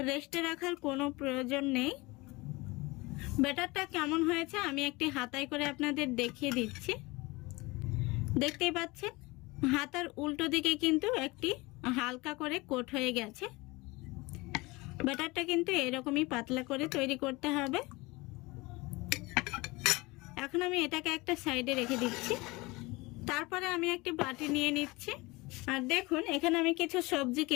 রেস্টে রাখার কোনো প্রয়োজন নেই। ব্যাটারটা কেমন হয়েছে আমি একটি হাতায় করে আপনাদের দেখিয়ে দিচ্ছি। দেখতেই পাচ্ছেন হাতার উল্টো দিকে কিন্তু একটি হালকা করে কোট হয়ে গেছে। ব্যাটারটা কিন্তু এরকমই পাতলা করে তৈরি করতে হবে। এখন আমি এটাকে একটা সাইডে রেখে দিচ্ছি। তারপরে আমি একটি বাটি নিয়ে নিচ্ছি। আর দেখুন এখানে আমি কিছু সবজি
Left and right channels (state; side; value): quieter; right; 23.3 dB